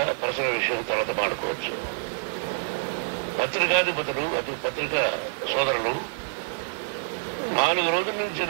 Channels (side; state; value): left; silent; digital silence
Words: పర్సనల్ విషయం తర్వాత మాడుకోవచ్చు. పత్రికాధిపతులు, అది పత్రికా సోదరులు 4 రోజుల నుంచి